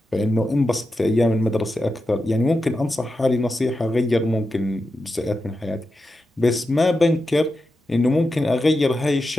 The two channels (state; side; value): normal; both; correlation 0.90